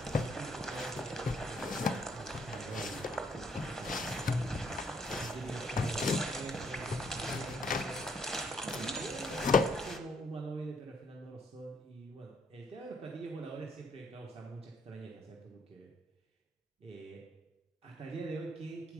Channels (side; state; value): both; normal; correlation 0.69